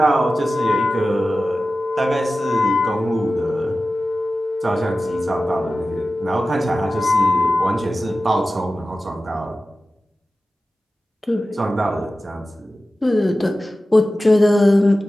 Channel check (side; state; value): both; normal; correlation 0.95